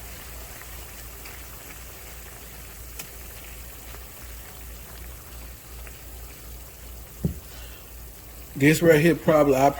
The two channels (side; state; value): both; identical; correlation 1.00